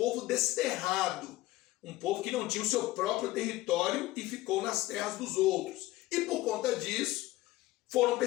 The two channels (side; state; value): right; quieter; 17.8 dB